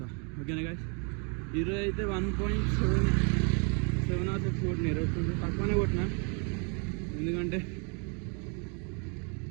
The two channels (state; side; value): quieter; left; 37.4 dB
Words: ఓకేనా గైస్? ఈరోజు అయితే 1.7 or 6 కొట్టిన. ఈరోజు కొంచెం తక్కువనే కొట్టిన, ఎందుకంటే